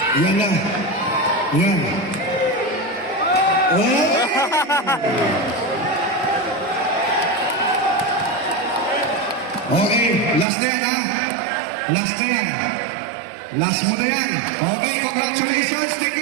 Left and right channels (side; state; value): left; drops out; at 10.5 s